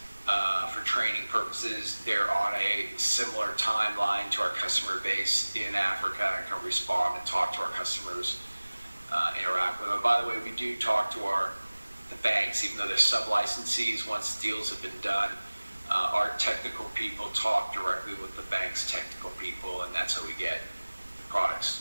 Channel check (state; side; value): inverted; both; correlation -1.00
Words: For training purposes, they're on a similar timeline to our customer base in Africa and can respond and talk to our customers, interact with them. And by the way, we do talk to the banks, even though they're sub-licensees. Once deals have been done, our technical people talk directly with the bank's technical people, and that's how we get the